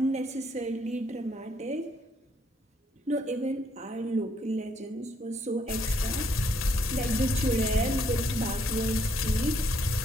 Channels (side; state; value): both; normal; correlation 0.70